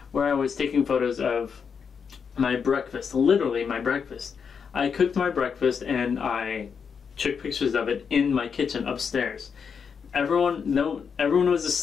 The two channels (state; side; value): quieter; right; 6.4 dB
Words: where I was taking photos of my breakfast, literally my breakfast. I cooked my breakfast and I took pictures of it in my kitchen upstairs. Everyone was